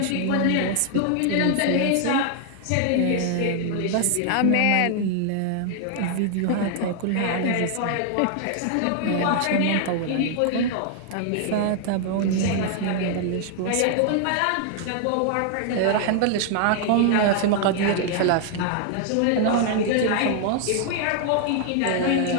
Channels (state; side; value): different; both; correlation 0.00